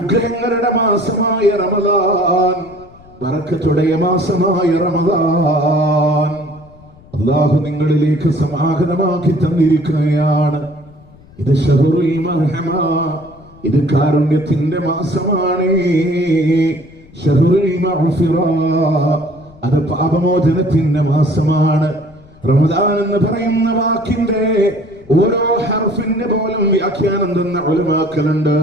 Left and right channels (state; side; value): noise; left; rumble, 25 dB below the sound